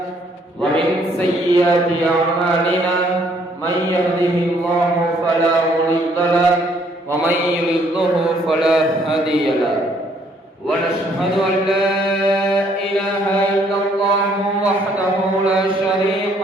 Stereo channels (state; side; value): normal; both; correlation 0.65